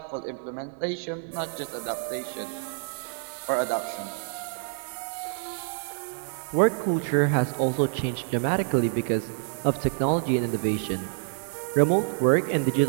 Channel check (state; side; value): silent; left; digital silence